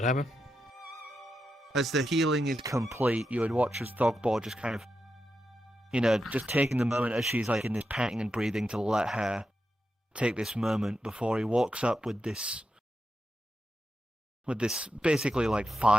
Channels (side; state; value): both; normal; correlation 0.88